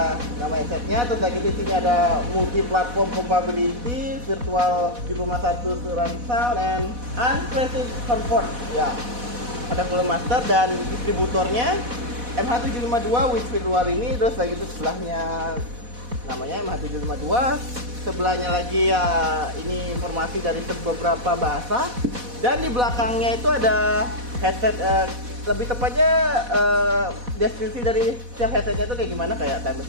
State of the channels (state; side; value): late; left; 4.1 ms